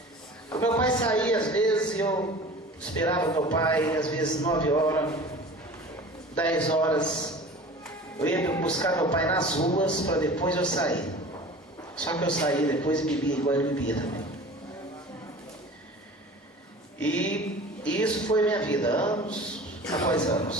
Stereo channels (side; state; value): both; normal; correlation 0.40